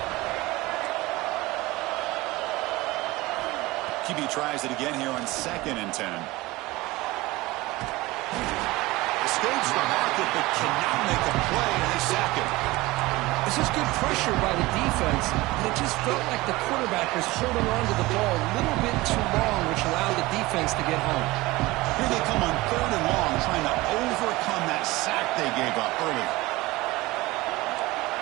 QB tries it again here on 2nd and 10. Escapes the pocket, but cannot make a play, and they sack him. This is good pressure by the defense, but it just felt like the quarterback was holding on to the ball a little bit too long, which allowed the defense to get home. Here they come on 3rd and long, trying to overcome that sack they gave up early.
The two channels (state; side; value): quieter; left; 20.4 dB